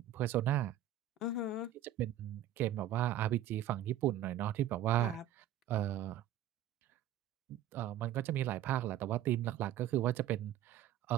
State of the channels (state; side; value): quieter; left; 10.6 dB